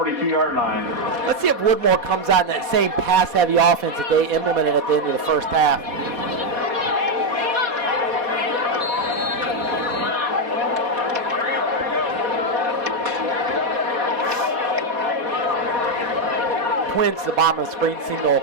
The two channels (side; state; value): left; late; 4.2 ms